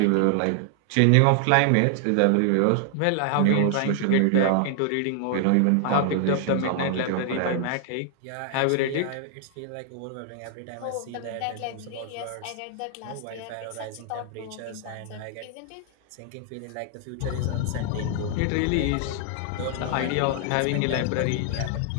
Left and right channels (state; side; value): different; both; correlation 0.00